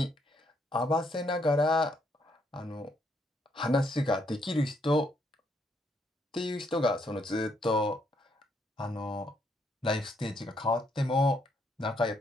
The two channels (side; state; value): both; normal; correlation 0.73